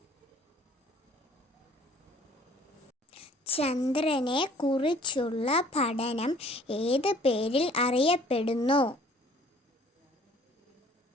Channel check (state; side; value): normal; both; correlation 0.55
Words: ചന്ദ്രനെ കുറിച്ചുള്ള പഠനം ഏത് പേരിൽ അറിയപ്പെടുന്നു?